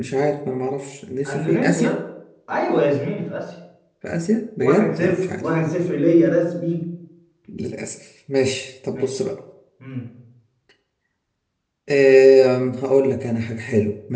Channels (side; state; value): both; identical; correlation 1.00